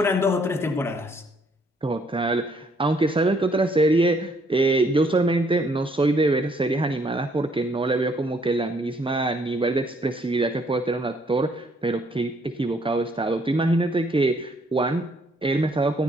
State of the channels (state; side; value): normal; both; correlation 0.66